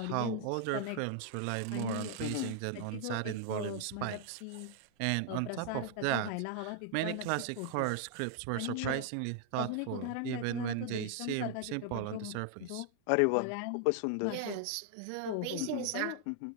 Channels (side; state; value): both; different; correlation 0.00